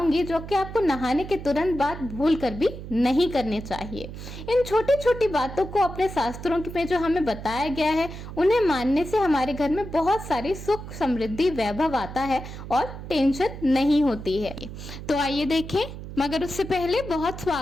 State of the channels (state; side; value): noise; right; hum, 11 dB below the sound